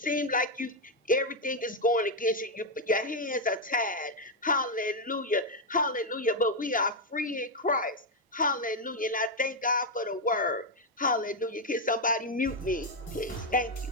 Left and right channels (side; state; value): both; normal; correlation 0.03